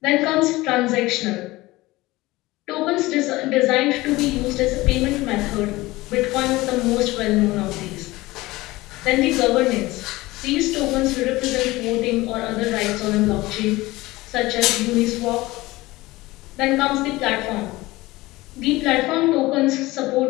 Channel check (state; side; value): quieter; right; 19.6 dB